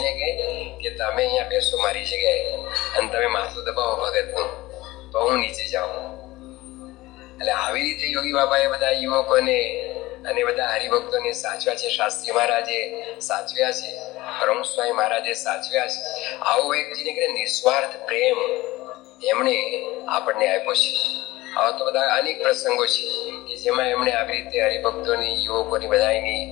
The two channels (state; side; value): quieter; right; 18.8 dB